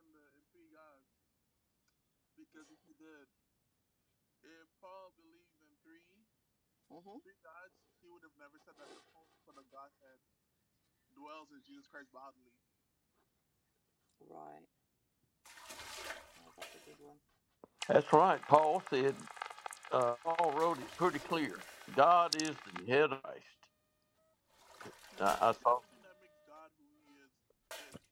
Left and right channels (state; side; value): identical; both; correlation 1.00